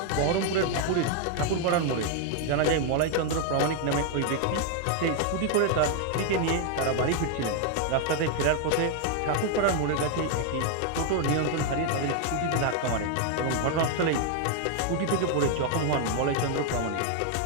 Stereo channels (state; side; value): different; both; correlation 0.00